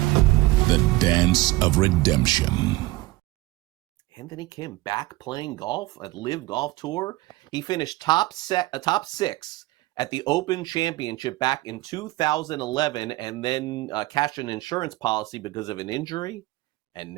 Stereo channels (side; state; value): left; quieter; 19.0 dB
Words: the dance of redemption. Anthony Kim back playing golf at Live Golf Tour. He finished top 6 at the Open Championship back in 2011 and then cashed an insurance policy because of an injury. And